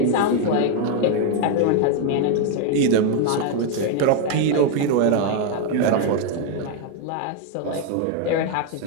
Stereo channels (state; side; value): different; both; correlation 0.01